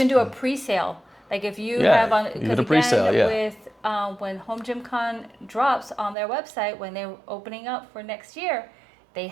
do a pre-sale. Like if you have on, because again, with when HomeGymCon drops on their website, when they're opening up for next year, they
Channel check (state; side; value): drops out; left; at 6.2 s